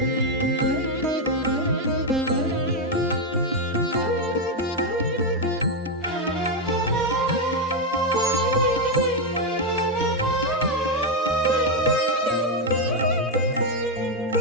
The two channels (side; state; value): both; normal; correlation 0.04